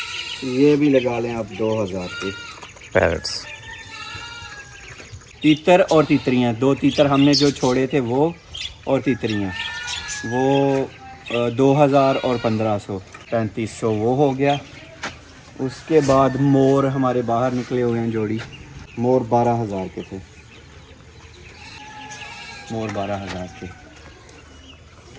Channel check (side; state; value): both; identical; correlation 1.00